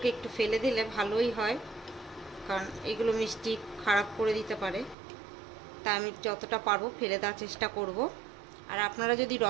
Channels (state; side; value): drops out; left; at 5.0 s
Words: একটু ফেলে দিলে ভালোই হয়, কারণ এগুলো মিষ্টি খারাপ করে দিতে পারে। তা আমি যতটা পারবো ফেলে দেওয়ার চেষ্টা করব। আর আপনারা যদি